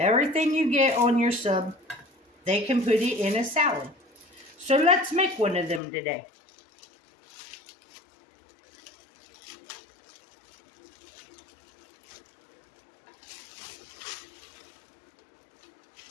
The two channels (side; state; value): right; drops out; at 5.8 s